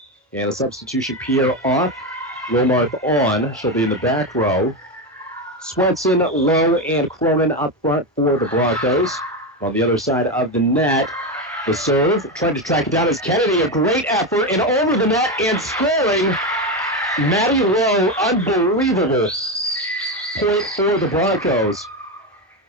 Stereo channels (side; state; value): both; normal; correlation 0.13